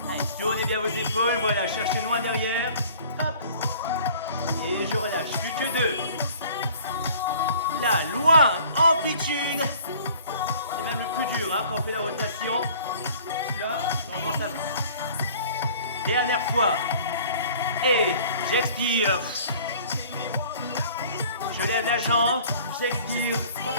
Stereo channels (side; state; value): both; inverted; correlation -0.50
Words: allez, tournez bien vos épaules. Voilà, cherchez loin derrière. Hop. Et je relâche. Plus que 2. Là, loin, amplitude. C'est même le plus dur hein, quand on fait la rotation. Là, normalement ça va. Dernière fois. Et j'expire. Je lève la jambe, j'expire.